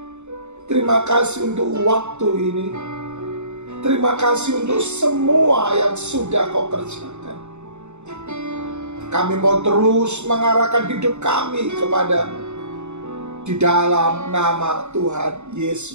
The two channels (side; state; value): left; late; 0.83 ms